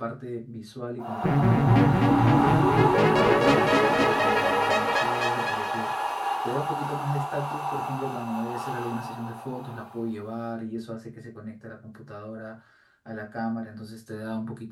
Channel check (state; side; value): identical; both; correlation 1.00